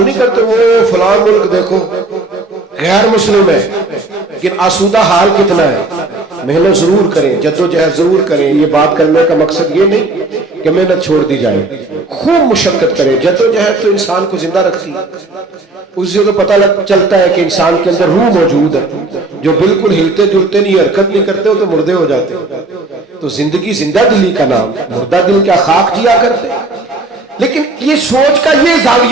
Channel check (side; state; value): left; quieter; 3.1 dB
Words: نہیں کرتے وہ فلاں ملک دیکھو غیر مسلم ہے لیکن آسودہ حال کتنا ہے. محنت ضرور کریں، جدوجہد ضرور کریں. یہ بات کرنے کا مقصد یہ نہیں کہ محنت چھوڑ دی جائے، خوب مشقت کریں. جدوجہد تو انسان کو زندہ رکھتی ہے. اس سے تو پتہ چلتا ہے کہ انسان کے اندر روح موجود ہے. جو بالکل ہلتے جلتے نہیں، حرکت نہیں کرتے، وہ تو مردے ہو جاتے. تو زندگی زندہ دلی کا نام، مردہ دل کیا خاک جیا کرتے. لیکن یہ سوچ کا یہ